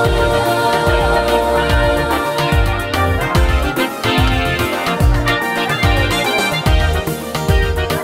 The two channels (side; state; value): both; identical; correlation 1.00